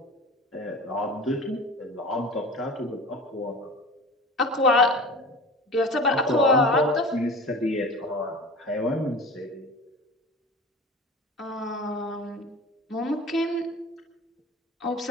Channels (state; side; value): normal; both; correlation 0.37